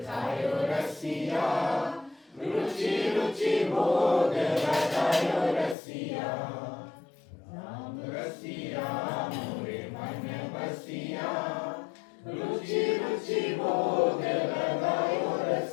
खायो रसिया रुचि रुचि भोग लगायो रसिया राम रसिया मोरे मन बसिया रुचि रुचि भोग लगायो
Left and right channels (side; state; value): right; drops out; at 5.8 s